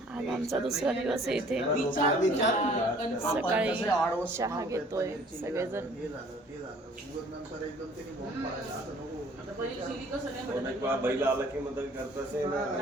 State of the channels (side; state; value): both; normal; correlation 0.55